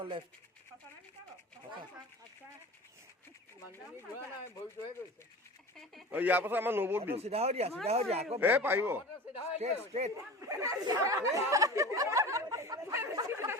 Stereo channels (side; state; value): both; normal; correlation 0.35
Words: লেফট ইয়াৰ পাছত আমাৰ নবৌত দিম চিধা হৈ দিয়া আকৌ পাৰিব ষ্ট্ৰেট